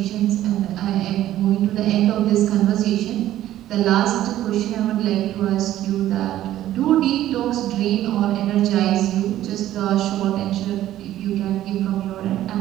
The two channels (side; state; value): left; quieter; 13.2 dB